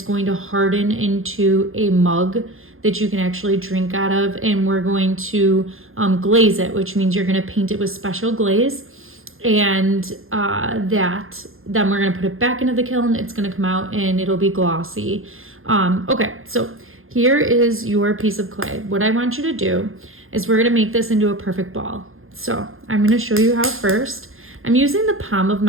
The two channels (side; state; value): left; late; 0.60 ms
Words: going to harden into a mug that you can actually drink out of. And we're going to glaze it, which means you're going to paint it with special glaze. And then we're going to put it back into the kiln. It's going to come out and it'll be glossy. Okay, so here is your piece of clay. What I want you to do is we're going to make this into a perfect ball. So I'm going to show you how first. I'm using the palm of